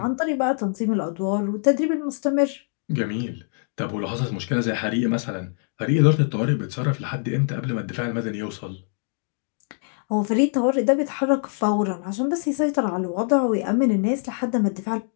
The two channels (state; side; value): silent; right; 58 dB below the other